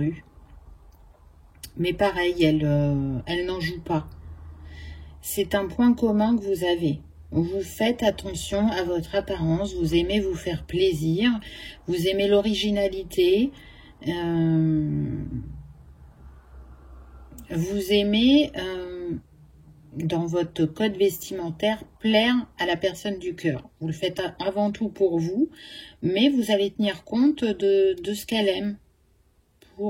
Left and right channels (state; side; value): identical; both; correlation 1.00